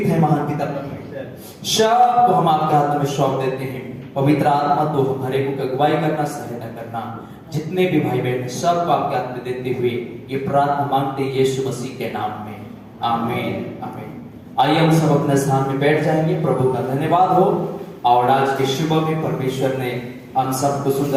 हैं महान पिता परमेश्वर, सब को हम आपके हाथ में सौंप देते हैं। पवित्र आत्मा तो हमारे को अगुवाई करना, सहायता करना। जितने भी भाई बहन सबको आपके हाथ में देते हुए ये प्रार्थना मांगते हैं यीशु मसीह के नाम में, आमीन आमीन। आइए हम सब अपने स्थान में बैठ जाएंगे। प्रभु का धन्यवाद हो। और आज के सुबह में परमेश्वर ने हम सबको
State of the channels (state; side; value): identical; both; correlation 1.00